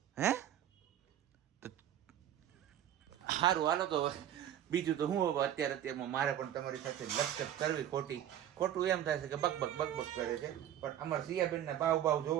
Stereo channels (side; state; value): left; quieter; 11.0 dB